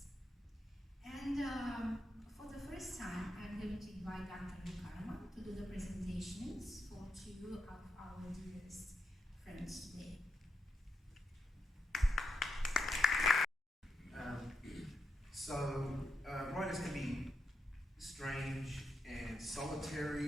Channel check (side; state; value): both; normal; correlation 0.85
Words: And for the first time, I'm going to invite Dr. Luke Carman to do the presentations for 2 of our dearest friends today. Writers can be strange and